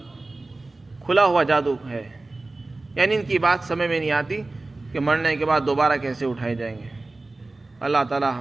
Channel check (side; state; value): left; quieter; 3.1 dB